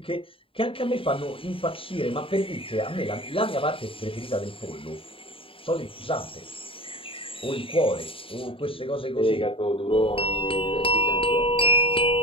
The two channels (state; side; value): late; right; 0.26 ms